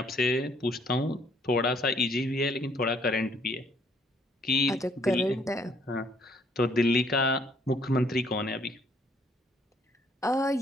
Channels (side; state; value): both; normal; correlation 0.65